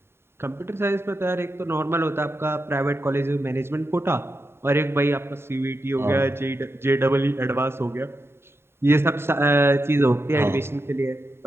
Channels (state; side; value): late; left; 0.12 ms